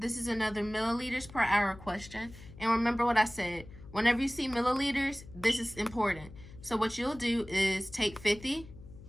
is another milliliters per hour question. And remember what I said. Whenever you see milliliters, this is important. So what you'll do is take 50,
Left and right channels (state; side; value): noise; left; hum, 17 dB below the sound